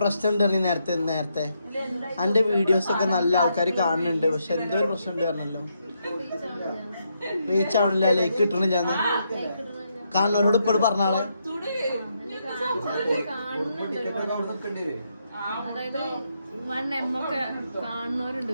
ഉണ്ട്. നേരത്തെ എന്റെ വീഡിയോസ് ഒക്കെ നല്ല ആൾക്കാർ കാണുന്നുണ്ട്, പക്ഷെ എന്തോ ഒരു പ്രശ്നം ഉണ്ട് പറഞ്ഞല്ലോ. റീച്ച് ആവണില്ല, ലൈക്ക് കിട്ടണില്ല. കാണുന്നവരോട് ഇപ്പോഴും പറഞ്ഞാളെ. അതായത് 1M ഒക്കെ കാണുന്നവരുണ്ട്,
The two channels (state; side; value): inverted; both; correlation -0.79